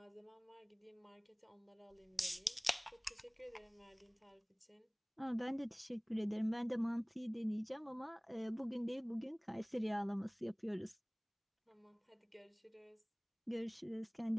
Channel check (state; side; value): identical; both; correlation 1.00